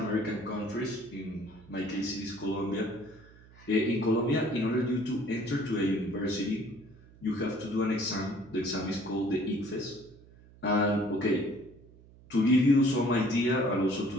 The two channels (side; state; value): right; noise; hum, 23 dB below the sound